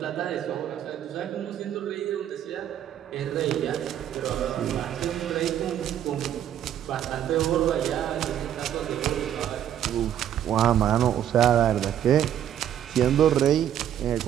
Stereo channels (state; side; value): quieter; left; 10.5 dB